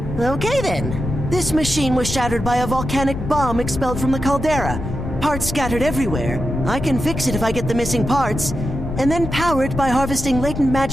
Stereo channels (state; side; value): noise; left; rumble, 6 dB below the sound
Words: Okay then. This machine was shattered by a volcanic bomb expelled from the caldera. Parts scattered everywhere. I can fix it if I get the missing parts, and then power it by harvesting latent